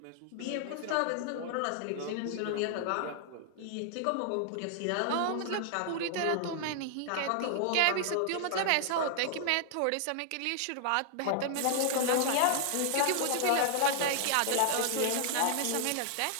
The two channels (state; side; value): different; both; correlation -0.01